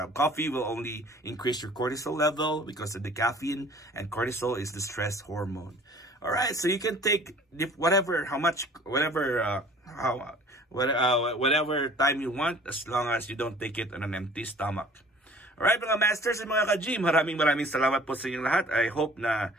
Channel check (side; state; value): both; normal; correlation 0.50